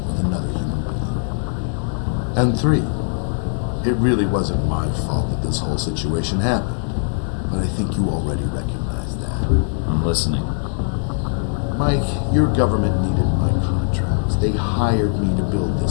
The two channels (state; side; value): silent; right; 65 dB below the other